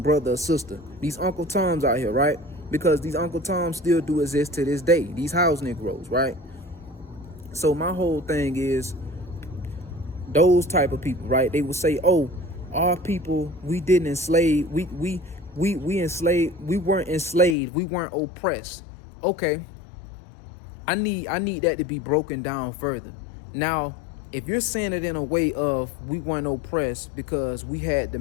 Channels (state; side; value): drops out; right; at 17.6 s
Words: brother or sister. These Uncle Toms out here, right? Because these Uncle Toms still do exist to this day. These house Negroes, right? So my whole thing is, those type of people, right? They will say, "Oh, our people, we didn't enslave. We enslaved. We weren't enslaved. We weren't oppressed." Okay, I need that to be broken down further. Now, if you're saying it in a way of we weren't oppressed because we had the